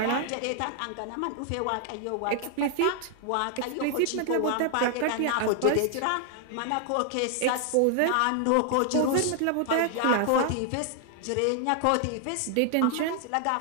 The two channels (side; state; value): both; different; correlation 0.00